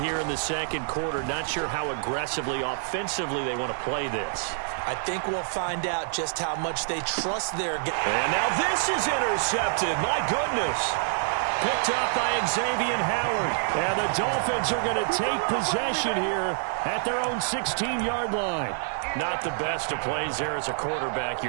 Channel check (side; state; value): left; silent; digital silence